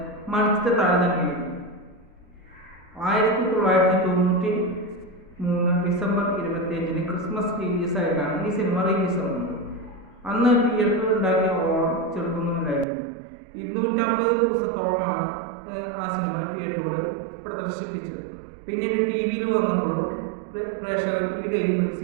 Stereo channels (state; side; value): drops out; left; at 12.9 s